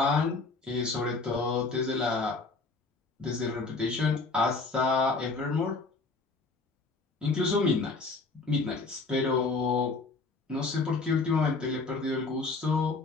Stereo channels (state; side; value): quieter; right; 3.9 dB